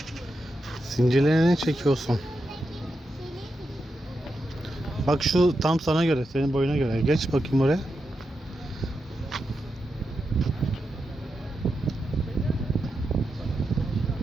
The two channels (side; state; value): both; normal; correlation 0.87